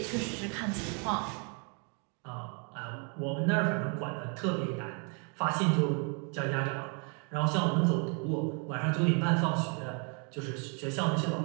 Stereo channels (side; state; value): left; quieter; 36.8 dB